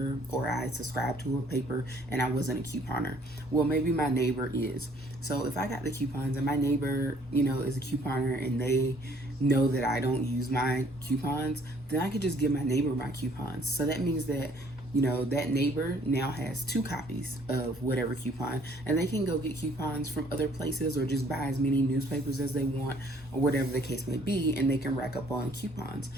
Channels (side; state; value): both; normal; correlation 0.60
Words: or I subscribed to a paper and I wasn't a couponer. Well, maybe my neighbor is. So if I got the coupons and my neighbor, is a couponer, and they know that I don't use my coupons, then I could just give my neighbor my coupons. So that means that that neighbor now has two copies of whatever coupon, and they can go get coupons from other places or just buy as many newspapers as they want or whatever the case may be, and they can rack up on coupons.